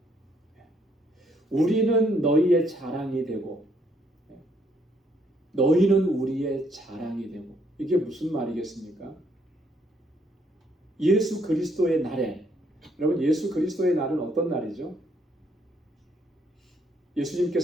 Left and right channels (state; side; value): normal; both; correlation 0.70